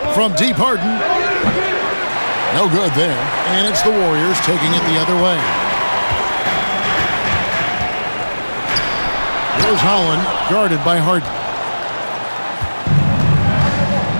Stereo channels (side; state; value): both; inverted; correlation -1.00